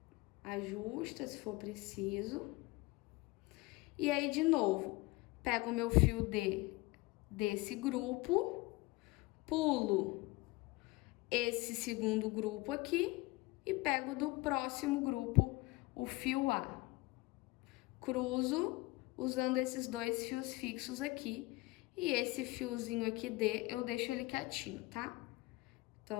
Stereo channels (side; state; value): right; quieter; 21.9 dB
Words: Ajusta se for preciso. E aí, de novo, pego o meu fio D desse grupo, pulo esse segundo grupo aqui e pego do próximo grupo o fio A. Cruzo usando esses 2 fios fixos aqui e esse fiozinho aqui D eu deixo ele quietinho, tá?